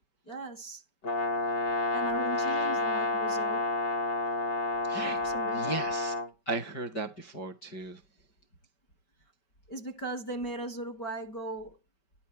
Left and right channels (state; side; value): late; right; 5.2 ms